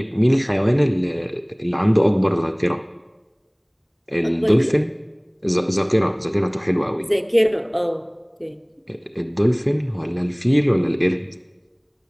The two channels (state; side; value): identical; both; correlation 1.00